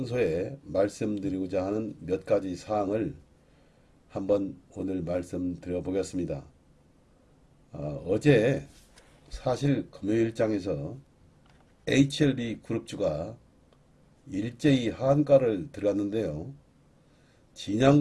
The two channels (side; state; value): both; identical; correlation 1.00